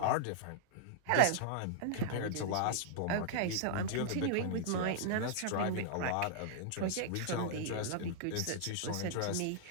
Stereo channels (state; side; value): different; both; correlation -0.01